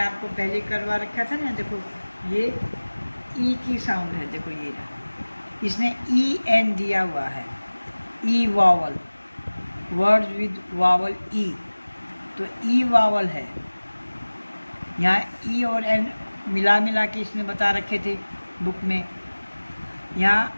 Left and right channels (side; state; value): both; inverted; correlation -1.00